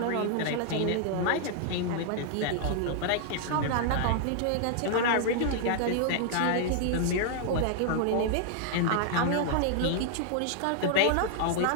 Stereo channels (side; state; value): both; different; correlation -0.01